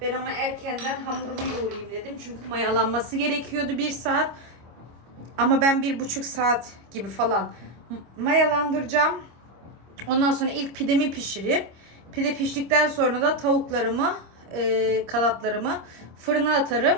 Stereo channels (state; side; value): late; left; 25 ms